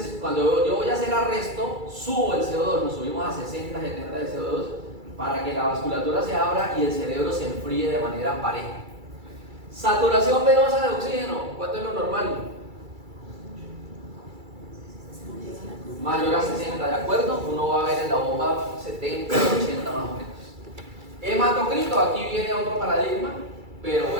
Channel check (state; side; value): late; left; 2.3 ms